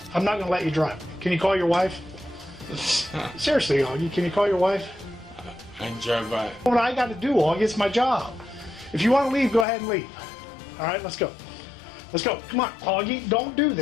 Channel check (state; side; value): drops out; right; at 9.7 s